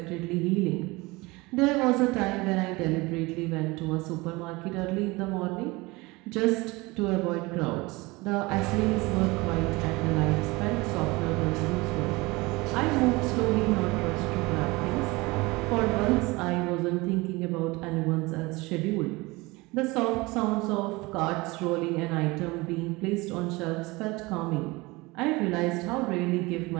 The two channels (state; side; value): quieter; left; 23.1 dB